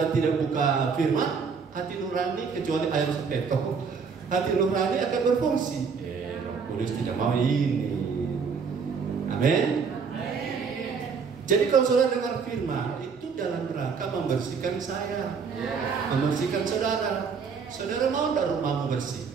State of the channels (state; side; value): quieter; left; 5.7 dB